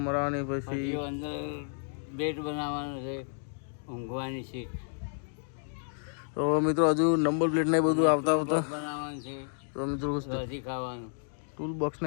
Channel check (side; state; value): right; silent; digital silence